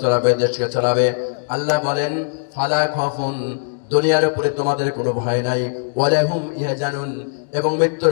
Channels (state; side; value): silent; right; digital silence